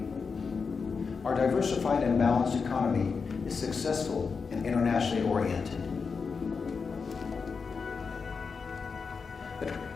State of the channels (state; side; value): quieter; right; 5.2 dB